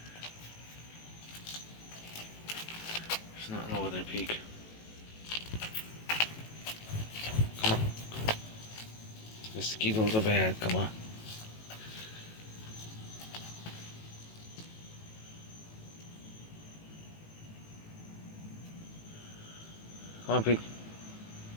There's nothing over there, Pete. Come on. Mosquitoes are bad. Come on. Come on, Pete.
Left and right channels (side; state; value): right; late; 18 ms